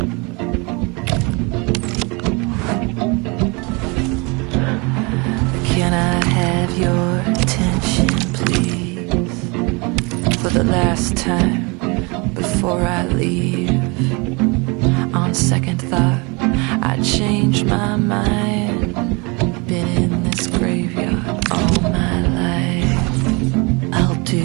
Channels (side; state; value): left; quieter; 28.8 dB